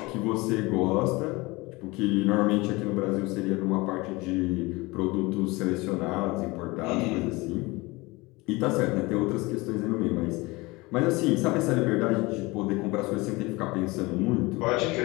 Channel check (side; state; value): right; quieter; 23.2 dB